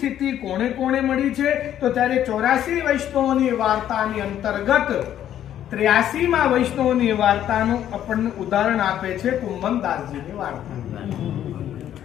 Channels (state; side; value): quieter; right; 11.0 dB